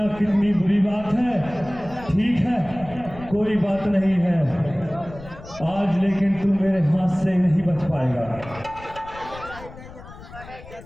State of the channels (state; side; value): noise; left; rumble, 17 dB below the sound